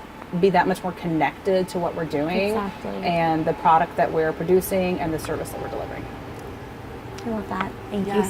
be that much more connected to what we're doing and the product that we're producing and the service that we're delivering. I love that. Thank you, Yes.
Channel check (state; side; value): identical; both; correlation 1.00